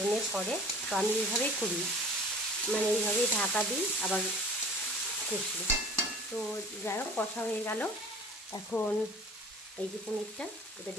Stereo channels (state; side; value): normal; both; correlation 0.45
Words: করে, তো আমি এইভাবেই করি, মানে এইভাবেই ঢাকা দিই আবার কষি। তো যাই হোক, কষা হয়ে গেল। এখন এই যে পনিরটা এটা